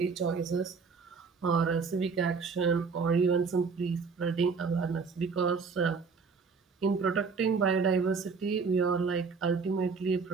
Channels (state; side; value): quieter; left; 5.1 dB